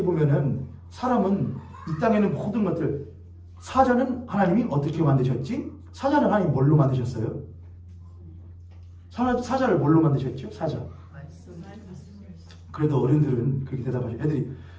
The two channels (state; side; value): identical; both; correlation 1.00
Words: 보면은 사람은 이 땅에는 모든 것들 사자는 하나님이 어떻게 만드셨지? 사자는 하나님이 뭘로 만드셨어요? 사자를 뭘로 만드셨죠? 사자 그래도 어른들은 그렇게 대답하죠. 애들이